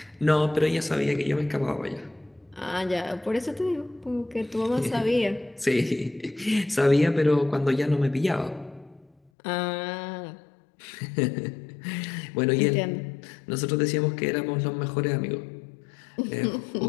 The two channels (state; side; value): drops out; right; at 9.3 s